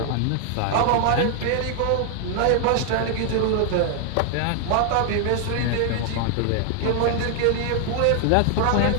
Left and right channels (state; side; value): different; both; correlation 0.00